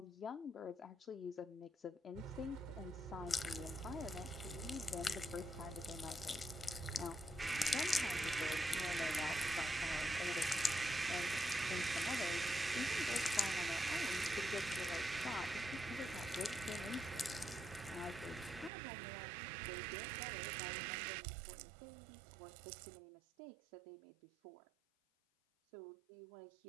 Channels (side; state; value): left; drops out; at 18.7 s